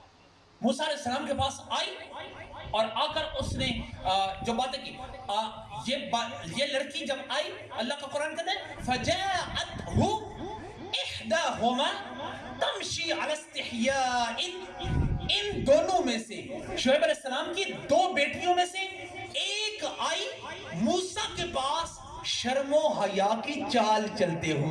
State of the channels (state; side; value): identical; both; correlation 1.00